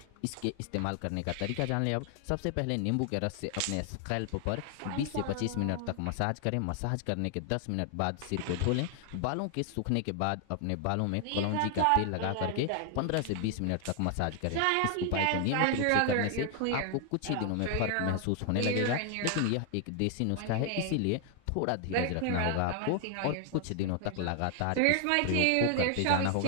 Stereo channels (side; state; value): both; different; correlation 0.00